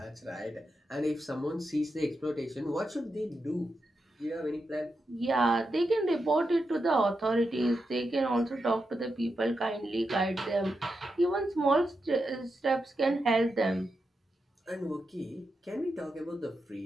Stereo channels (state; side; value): normal; both; correlation 0.87